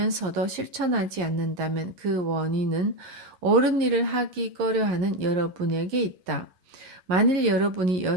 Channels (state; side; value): late; left; 11 ms